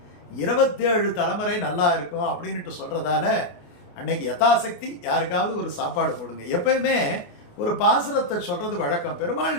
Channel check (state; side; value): late; right; 29 ms